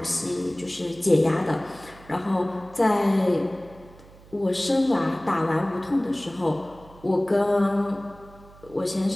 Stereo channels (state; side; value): noise; right; hum, 23 dB below the sound